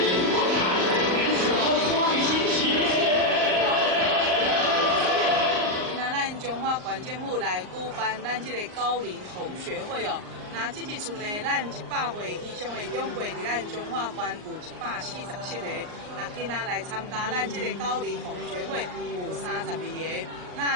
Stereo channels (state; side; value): late; left; 39 ms